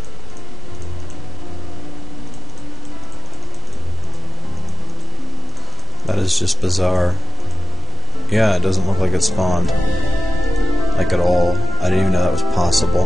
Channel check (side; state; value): both; normal; correlation 0.85